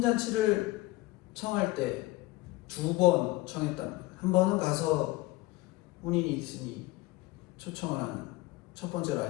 청할 때 두 번 청했답니다. 한 번은 가서 혼인이 있으니 초청을 하는 첫 번째로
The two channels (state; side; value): quieter; right; 19.8 dB